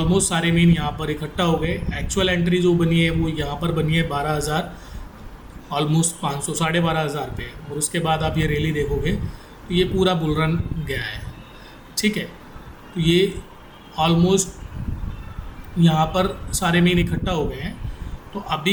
सारे मीन यहाँ पर इकट्ठा हो गए। एक्चुअल एंट्री जो बनी है वो यहाँ पर बनी है 12,000 ऑलमोस्ट 500 12,500 पे। और उसके बाद आप ये रैली देखोगे तो ये पूरा बुल रन गया है, ठीक है। तो ये ऑलमोस्ट यहाँ पर सारे मीन इकट्ठा हो गए हैं। तो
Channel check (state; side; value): identical; both; correlation 1.00